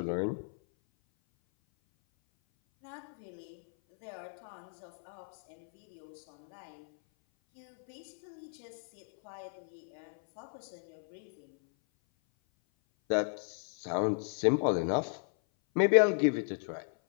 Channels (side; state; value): right; silent; 55 dB below the other